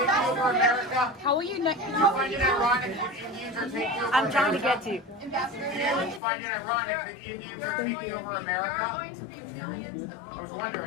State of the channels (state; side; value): drops out; right; at 6.2 s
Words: How will you not? I'm trying to get to you. You find it ironic that Indians are taking over America? Going to be millions of people. I was